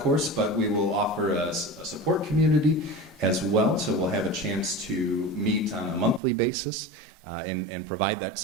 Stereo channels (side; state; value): left; drops out; at 6.2 s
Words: but we will offer a support community as well. So we'll have a chance to meet on a monthly basis and provide that